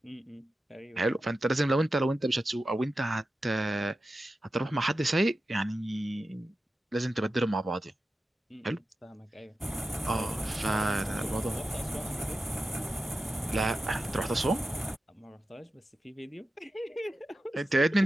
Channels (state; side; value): normal; both; correlation 0.92